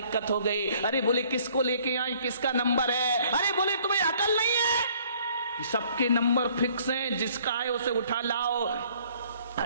हो गई? अरे बोले किसको लेके आए, किसका नंबर है? अरे बोले तुम्हें अकल नहीं है, सबके नंबर फिक्स हैं, जिसका है उसे उठा लाओ।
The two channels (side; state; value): both; inverted; correlation -0.60